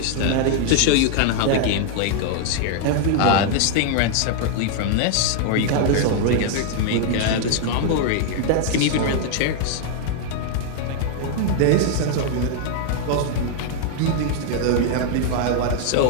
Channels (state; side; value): different; both; correlation 0.00